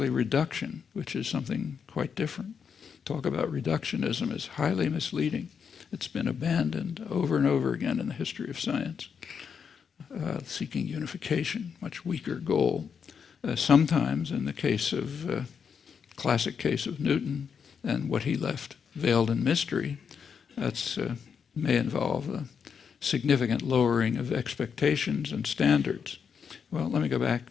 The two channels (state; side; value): quieter; right; 6.7 dB